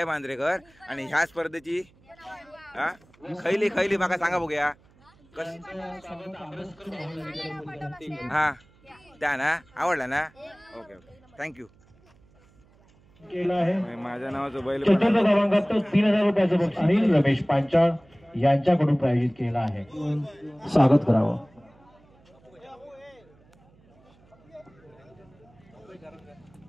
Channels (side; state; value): right; noise; hum, 30 dB below the sound